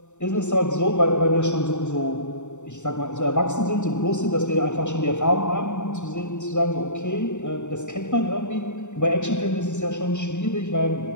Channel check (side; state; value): right; late; 0.84 ms